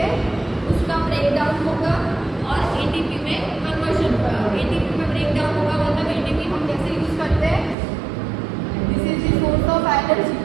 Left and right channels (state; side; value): drops out; left; at 7.8 s